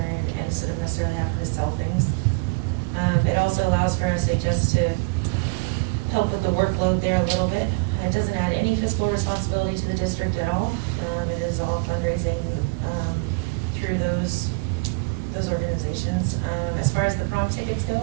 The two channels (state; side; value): quieter; left; 29.0 dB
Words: and instead of necessarily having to sell things. It also allows for us just to help with the workload there a little bit. It doesn't add any fiscal responsibility to the district at all. It is all fundraising through those organizations. As far as the prom tickets go,